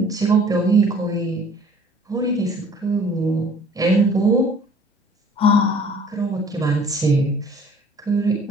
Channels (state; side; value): normal; both; correlation 0.53